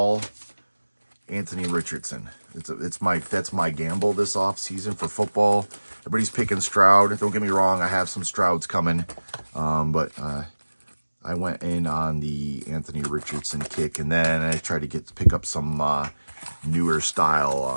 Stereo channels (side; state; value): both; inverted; correlation -1.00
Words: Anthony Richardson. That's my gamble this off season for football. Everybody's picking Stroud. Don't get me wrong, I have some Strouds coming, but I went in on the Anthony Richardson kick, and then I tried to pick up some newer